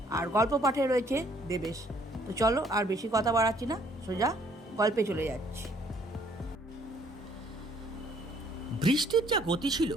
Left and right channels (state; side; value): normal; both; correlation 0.62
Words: আর গল্প পাঠে রয়েছে দেবেশ। তো চলো আর বেশি কথা বাড়াচ্ছি না, সোজা গল্পে চলে যাচ্ছি। বৃষ্টির যা গতি ছিল